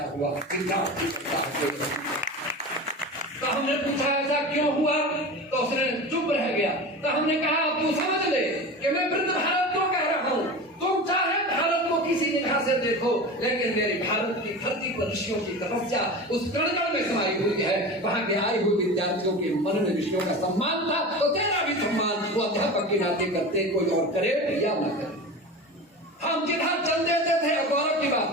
हुआ विद्यार्थी करता है। तो हमने पूछा ऐसा क्यों हुआ? तो उसने चुप रह गया। तो हमने कहा तू समझ ले कि मैं वृद्ध भारत क्यों कह रहा हूँ। तुम चाहे भारत को किसी निगाह से देखो, लेकिन मेरे भारत की धरती पर ऋषियों की तपस्या उस कण में समाई हुई है। वहां के आए हुए विद्यार्थियों के मन में ऋषियों का सम्मान था, तो तेरा भी सम्मान वो अध्यापक के नाते करते, कोई और करे या न करे। हम जिधर चल देते थे, गौरव की बात,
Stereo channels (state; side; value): normal; both; correlation 0.30